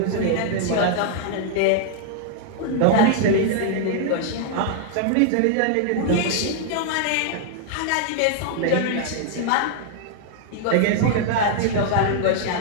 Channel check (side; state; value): both; different; correlation -0.01